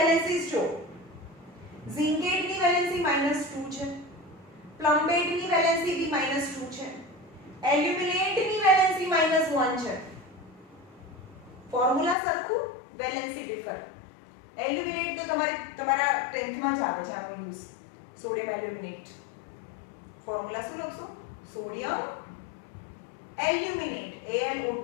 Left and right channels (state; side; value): drops out; right; at 12.2 s